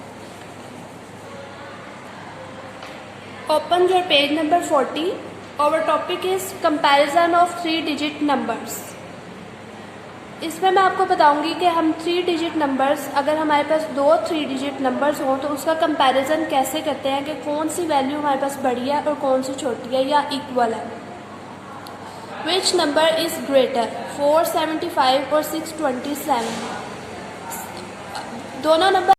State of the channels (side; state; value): both; identical; correlation 1.00